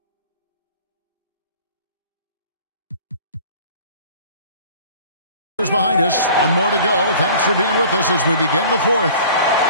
Behind us. One more to go. Thanks for being with us as we begin the fourth.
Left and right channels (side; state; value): both; inverted; correlation -0.46